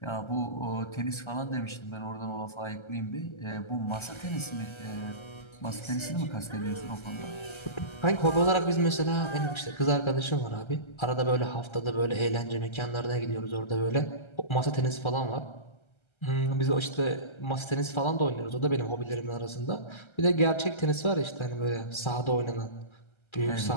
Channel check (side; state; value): right; late; 1.3 ms